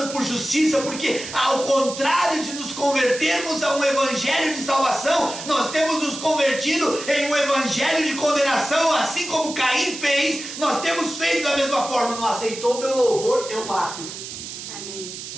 por justiça, porque ao contrário de nos convertermos a um evangelho de salvação, nós temos nos convertido em um evangelho de condenação, assim como Caim fez. Nós temos feito da mesma forma. Não aceitou o meu louvor, eu mato. Amém.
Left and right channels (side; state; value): right; noise; hiss, 10 dB below the sound